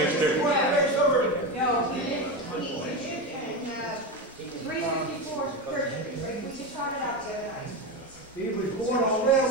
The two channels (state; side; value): normal; both; correlation 0.17